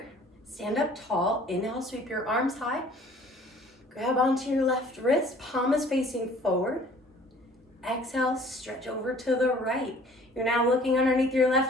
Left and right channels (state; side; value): normal; both; correlation 0.53